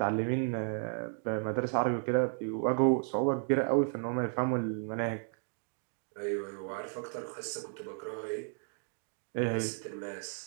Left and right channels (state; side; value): silent; left; 55 dB below the other